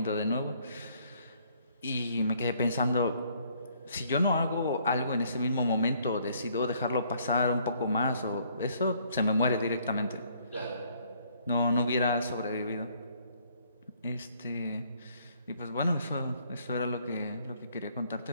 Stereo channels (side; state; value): both; inverted; correlation -0.64